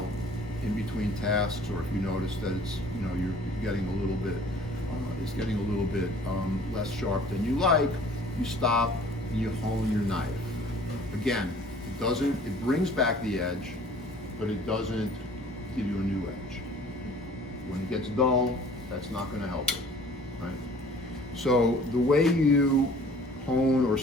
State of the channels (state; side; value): normal; both; correlation 0.51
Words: in between tasks, or if you notice that it's you're getting a little bit less sharp than you like, you stop and you hone your knife. Again, it brings back the edge, but it doesn't give you a new edge. When it gets dull, that's not going to help it, right? So the way you hone or